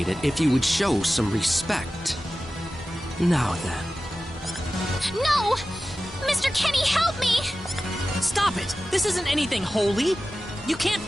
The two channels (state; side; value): normal; both; correlation 0.95